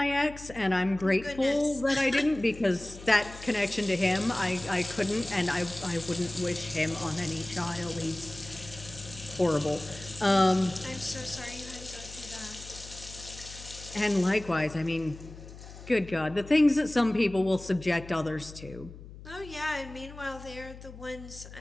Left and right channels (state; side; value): noise; left; hum, 15 dB below the sound